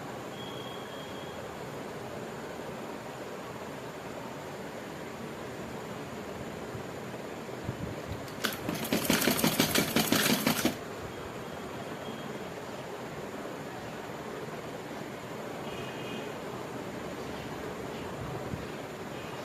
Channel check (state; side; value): identical; both; correlation 1.00